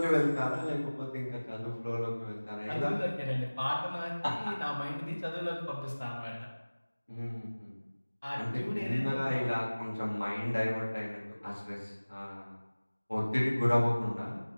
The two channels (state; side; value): inverted; both; correlation -1.00